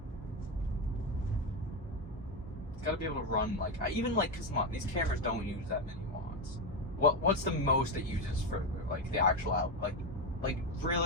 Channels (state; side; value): normal; both; correlation 0.11